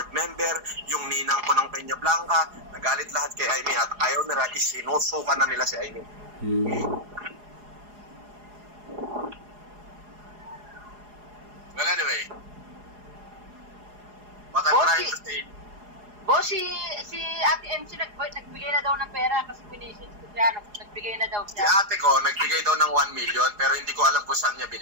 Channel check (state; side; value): late; left; 4.8 ms